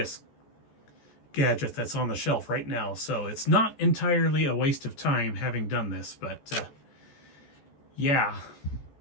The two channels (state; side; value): late; right; 14 ms